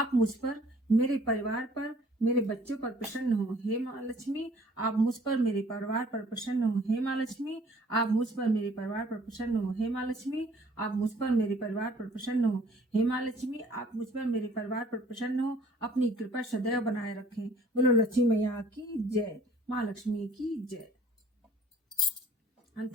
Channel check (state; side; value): normal; both; correlation 0.55